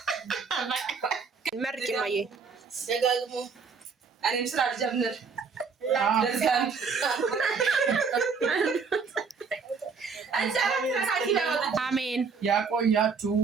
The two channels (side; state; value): left; quieter; 5.3 dB